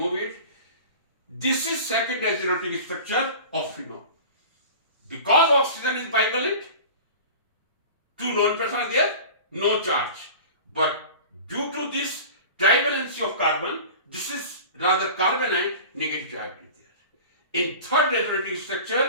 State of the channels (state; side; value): inverted; both; correlation -0.37